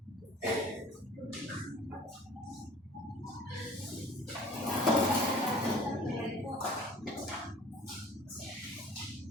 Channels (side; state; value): both; normal; correlation 0.49